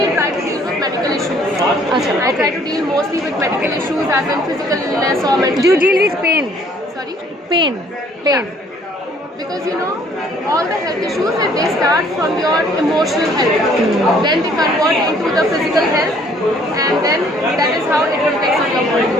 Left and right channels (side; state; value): both; normal; correlation 0.60